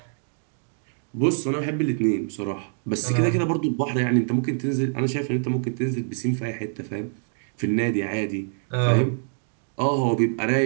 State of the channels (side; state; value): left; silent; digital silence